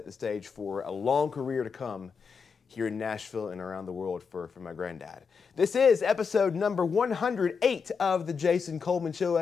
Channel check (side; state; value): right; quieter; 5.7 dB